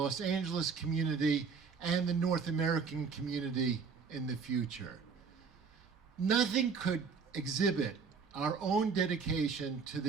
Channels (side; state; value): left; quieter; 5.5 dB